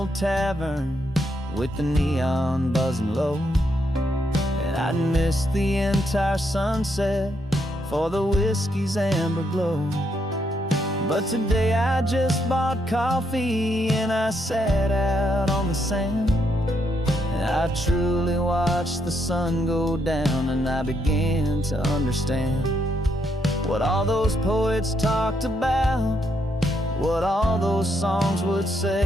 tavern with the neon buzzing low, and I'd miss the entire sunset for the whiskey's amber glow. But today I just bought coffee and I sat out on the sand, and I truly watched the sun go down, and I began to understand what all those poets talked about, what all those songs would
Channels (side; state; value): both; normal; correlation 0.77